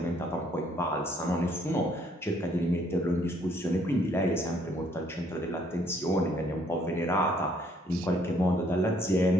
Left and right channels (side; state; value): both; normal; correlation 0.66